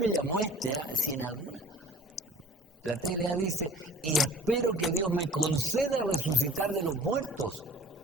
llamó si en alguna. La TLA dice, y espero que Dios me conceda resucitar de los muertos.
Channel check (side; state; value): both; normal; correlation 0.46